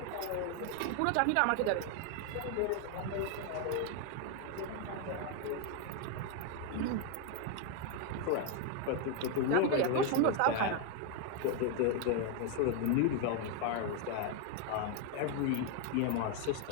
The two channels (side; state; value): both; different; correlation 0.01